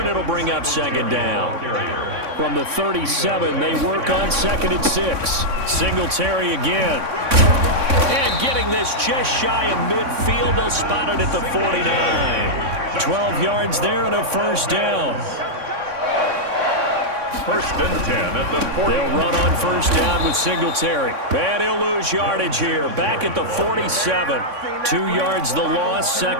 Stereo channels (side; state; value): left; late; 3.6 ms